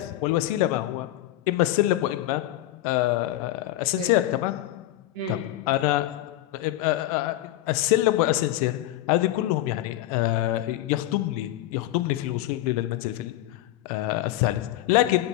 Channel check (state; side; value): quieter; right; 14.8 dB